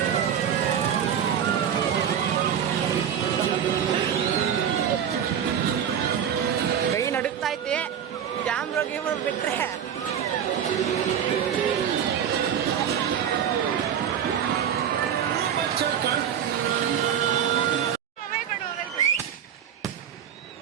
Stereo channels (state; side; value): quieter; left; 8.8 dB